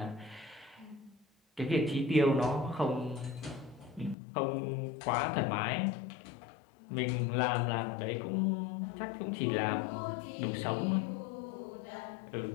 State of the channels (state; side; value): drops out; right; at 4.2 s